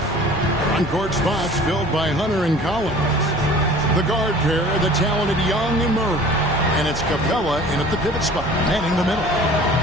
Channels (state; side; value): normal; both; correlation 0.46